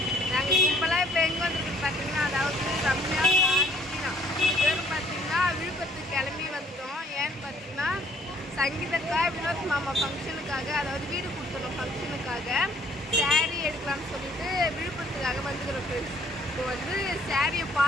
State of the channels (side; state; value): both; normal; correlation 0.61